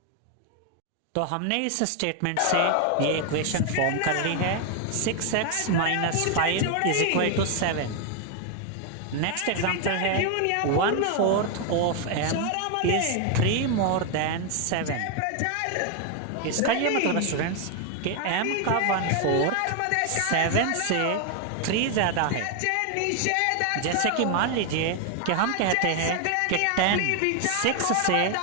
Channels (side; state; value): both; different; correlation 0.01